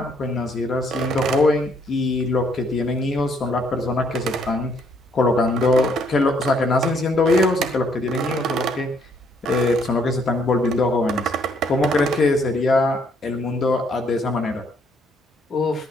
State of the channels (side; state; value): both; normal; correlation 0.68